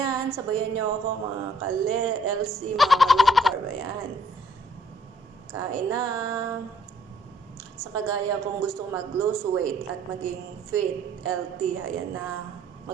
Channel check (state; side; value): normal; both; correlation 0.63